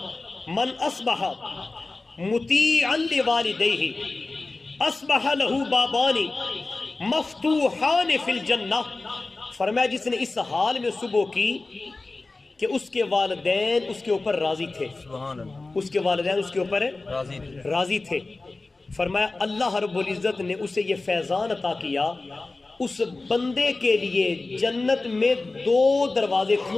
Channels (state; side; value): quieter; right; 3.4 dB